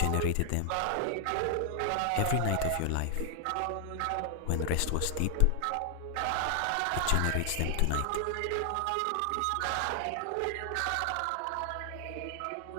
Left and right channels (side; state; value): both; different; correlation 0.00